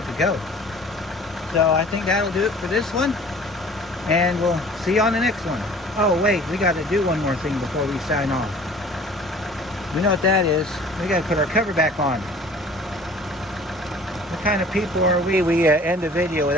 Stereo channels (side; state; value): both; normal; correlation 0.48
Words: to go. So I think that'll do it for this one, and we'll see you on the next one. Oh wait, we got to do one more thing before we sign off. We know what that is. We got to put our cover back on. What kind of people are we? We end a video